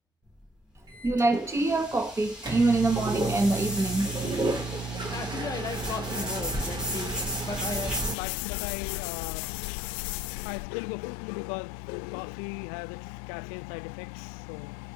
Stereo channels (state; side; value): drops out; right; at 8.2 s